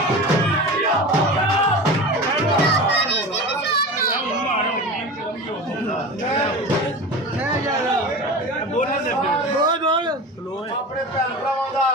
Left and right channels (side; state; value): both; normal; correlation 0.31